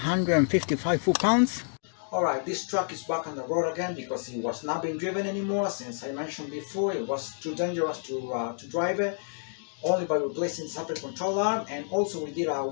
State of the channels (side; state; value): right; silent; digital silence